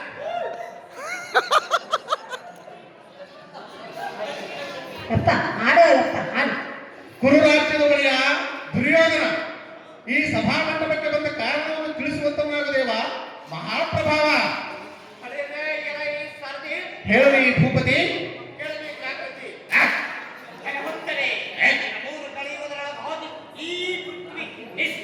ಅಪ್ಪ ಆಡೋಲ್ಲಪ್ಪ ಆಡು. ಕುರುರಾಜ್ಯದ ಒಡೆಯ ದುರ್ಯೋಧನ ಈ ಸಭಾಮಂಟಪಕ್ಕೆ ಬಂದ ಕಾರಣವನ್ನು ತಿಳಿಸುವಂತವನಾಗದೇವ ಮಹಾಪ್ರಭಾವ. ಹೇಳಿ ಭೂಪತಿ.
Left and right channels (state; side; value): identical; both; correlation 1.00